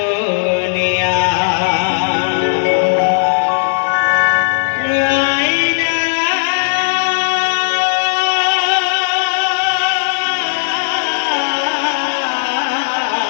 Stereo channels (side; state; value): right; silent; digital silence